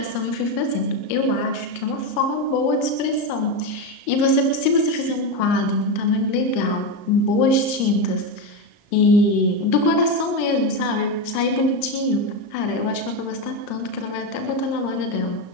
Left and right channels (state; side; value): late; right; 34 ms